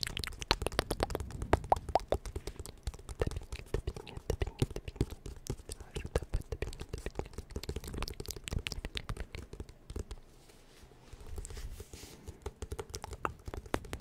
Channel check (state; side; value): identical; both; correlation 1.00